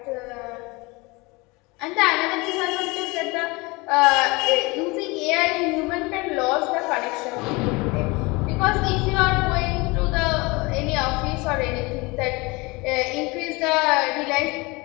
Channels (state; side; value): quieter; right; 25.1 dB